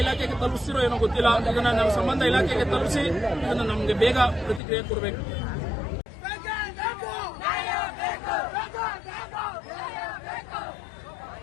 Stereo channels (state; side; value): drops out; right; at 4.6 s